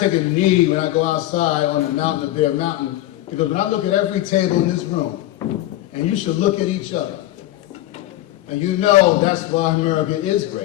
take a knee when I go outside on the mountain of Bear Mountain, because when I look at every table in this room, and you should look at each other, and you know that's why America is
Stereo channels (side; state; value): right; quieter; 15.4 dB